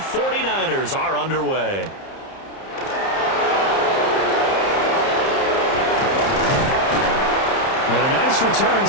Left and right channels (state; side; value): late; right; 30 ms